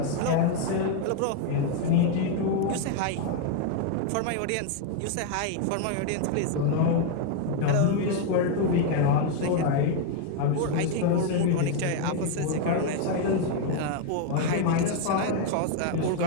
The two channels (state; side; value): different; both; correlation 0.00